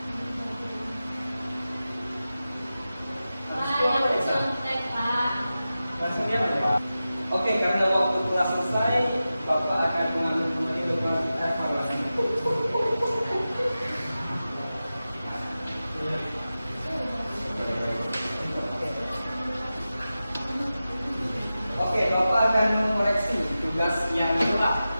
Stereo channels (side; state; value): both; inverted; correlation -0.94